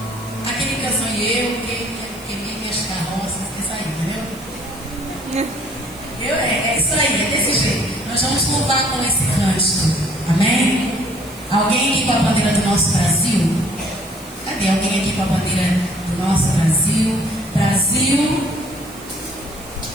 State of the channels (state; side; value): noise; right; hiss, 20 dB below the sound